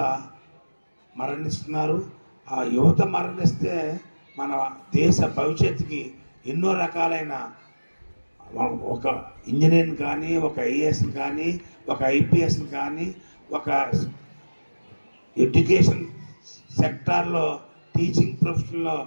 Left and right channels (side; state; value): both; inverted; correlation -1.00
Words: మరణిస్తున్నారు. ఆ యువత మరణిస్తే మన దేశ భవిష్యత్తుకి ఎన్నో రకాలైన, ఒక ఇంజనీర్ని కానీ, ఒక ఐఏఎస్ని కానీ, ఒక ఐపీఎస్ని కానీ, ఒక ఎడ్యుకేషన్ సెక్టార్లో టీచింగ్ ప్రొఫెషన్లో